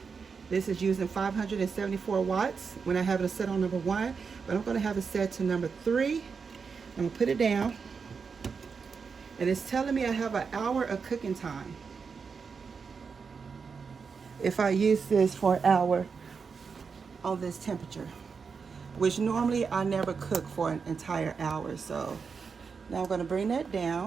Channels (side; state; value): left; quieter; 5.5 dB